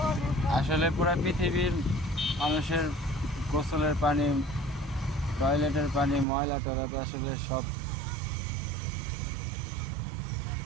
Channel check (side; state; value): left; drops out; at 6.2 s